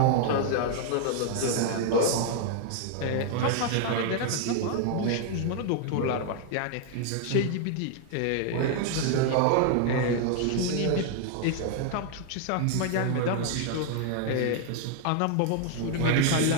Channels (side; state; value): both; different; correlation 0.00